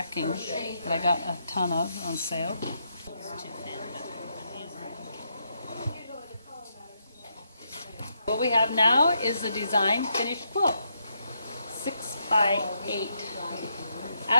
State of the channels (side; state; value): both; inverted; correlation -0.79